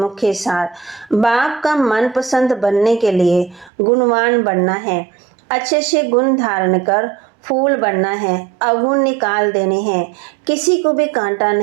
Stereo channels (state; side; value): drops out; left; at 3.7 s